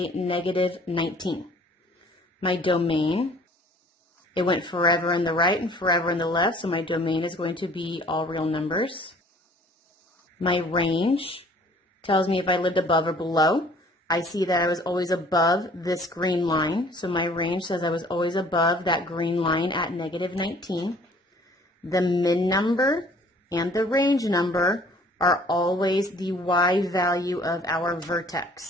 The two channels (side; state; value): both; normal; correlation 0.54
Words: -19. My domain, it went forever in the right and forever in the left, so my domain is going to be all real numbers. My range tells me if I lived above or below. I see that I was always above this green line, so my range says I was always above that green line at -19. The min number and the range number are always the y value of our